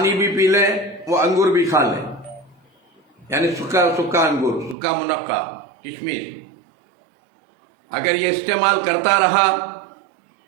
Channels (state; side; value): drops out; left; at 4.8 s